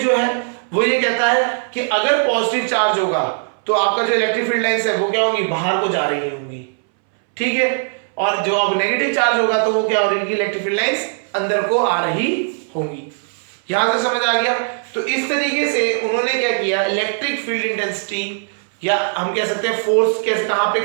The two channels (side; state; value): left; silent; 65 dB below the other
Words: जो है वो ये कहता है कि अगर पॉजिटिव चार्ज होगा तो आपका जो इलेक्ट्रिक फील्ड लाइंस है वो क्या होंगी, बाहर को जा रही होंगी, ठीक है। और जो अब नेगेटिव चार्ज होगा तो वो क्या हो रही है, इलेक्ट्रिक फील्ड लाइंस अंदर को आ रही होंगी। यहां से समझ आ गया। तो इस तरीके से उन्होंने क्या किया, इलेक्ट्रिक फील्ड इंटेंसिटी या हम कह सकते हैं फोर्स कैसे